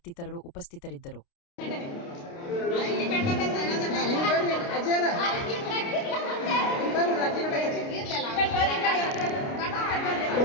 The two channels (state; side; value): late; right; 29 ms